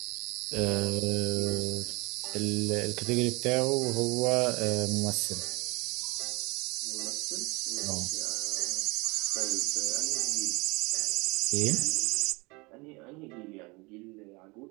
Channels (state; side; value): quieter; left; 26.3 dB